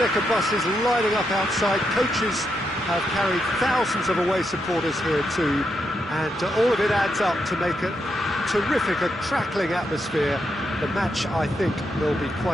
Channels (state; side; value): normal; both; correlation 0.82